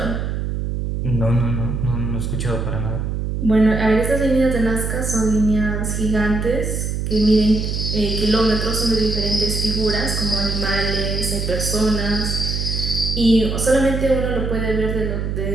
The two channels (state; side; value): noise; right; hum, 2 dB below the sound